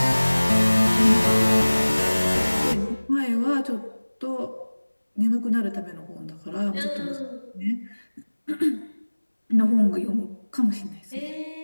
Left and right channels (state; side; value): inverted; both; correlation -1.00